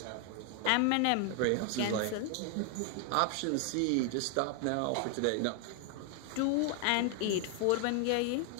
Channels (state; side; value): different; both; correlation 0.00